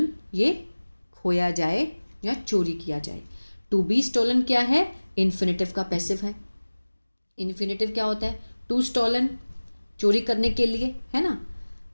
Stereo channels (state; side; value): inverted; both; correlation -1.00